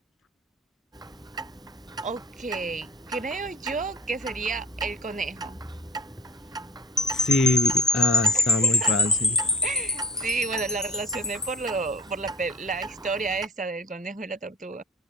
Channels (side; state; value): both; normal; correlation 0.39